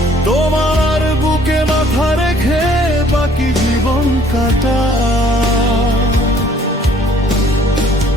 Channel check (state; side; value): normal; both; correlation 0.58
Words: তোমার বুকে মাথা রেখে বাকি জীবন কাটা।